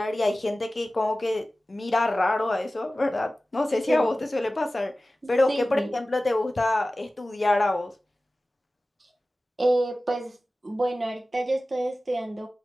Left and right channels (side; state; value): both; normal; correlation 0.96